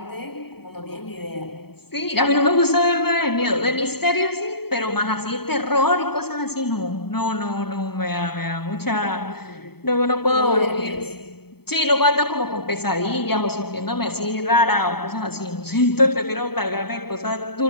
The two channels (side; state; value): right; late; 0.96 ms